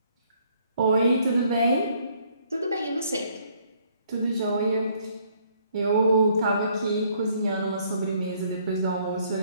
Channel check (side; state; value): both; inverted; correlation -0.65